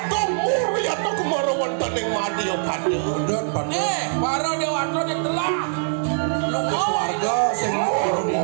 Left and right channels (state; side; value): silent; left; digital silence